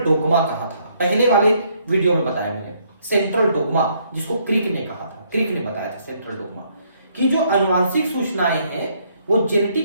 कहा था, पहले वाले वीडियो में बताया मैंने सेंट्रल डोग्मा, जिसको क्रिक ने कहा था, क्रिक ने बताया था सेंट्रल डोग्मा कि जो आनुवांशिक सूचनाएं हैं वो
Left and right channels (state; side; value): inverted; both; correlation -0.69